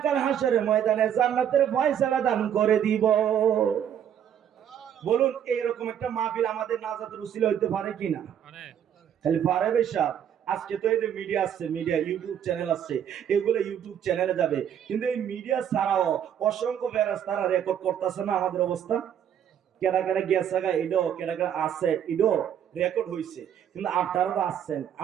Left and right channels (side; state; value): left; quieter; 9.4 dB